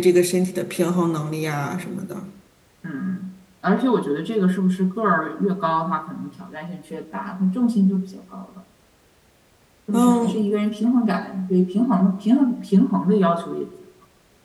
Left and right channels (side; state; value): both; identical; correlation 1.00